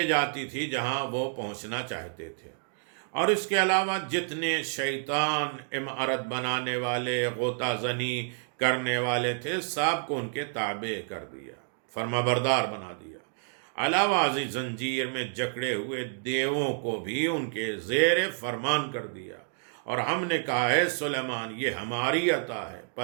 جاتی تھی جہاں وہ پہنچنا چاہتے تھے۔ اور اس کے علاوہ جتنے شیطان عمارت بنانے والے، غوطہ زنی کرنے والے تھے، سب کو ان کے تابع کر دیا، فرما بردار بنا دیا۔ علاوہ ازیں زنجیر میں جکڑے ہوئے دیووں کو بھی ان کے زیر فرمان کر دیا۔ اور ہم نے کہا ہے سلیمان یہ ہماری عطا ہے،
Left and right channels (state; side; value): silent; left; 58 dB below the other